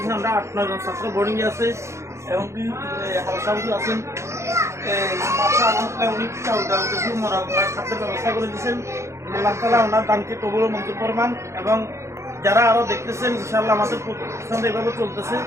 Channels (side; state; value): left; late; 0.14 ms